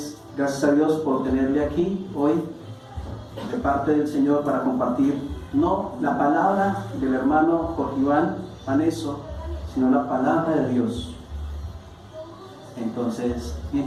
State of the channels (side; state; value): both; identical; correlation 1.00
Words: gracias a Dios por tenerle aquí hoy de parte del Señor para compartir no la palabra del hermano Jorge Iván Paneso, sino la palabra de Dios. Entonces,